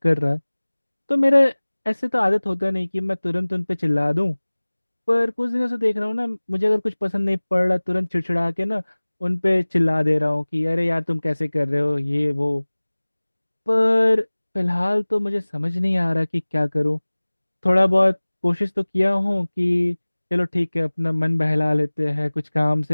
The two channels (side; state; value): both; inverted; correlation -1.00